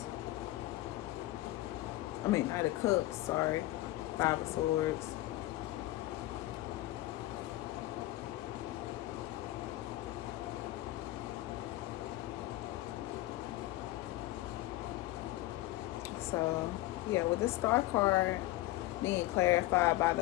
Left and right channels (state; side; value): quieter; right; 17.2 dB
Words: I mean, Knight of Cups, sorry. Five of Swords. So, yeah, with this Star card being clarified by the